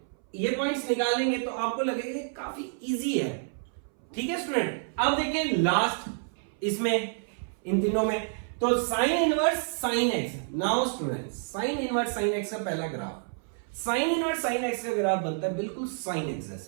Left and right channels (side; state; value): left; silent; 59 dB below the other